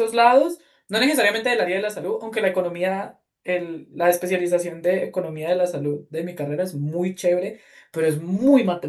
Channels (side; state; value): both; identical; correlation 1.00